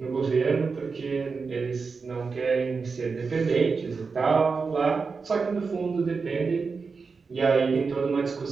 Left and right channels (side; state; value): left; quieter; 4.8 dB